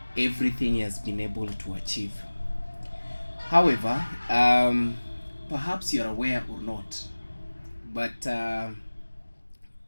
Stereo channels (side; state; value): both; inverted; correlation -1.00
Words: everything he has been able to achieve. However, perhaps you're aware or not, but